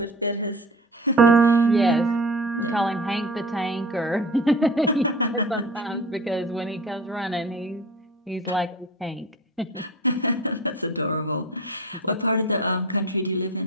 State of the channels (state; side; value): normal; both; correlation 0.37